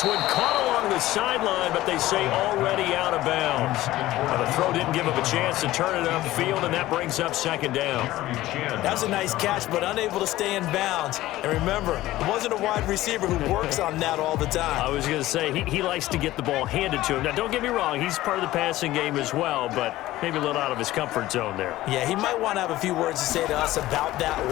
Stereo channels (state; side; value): quieter; right; 16.1 dB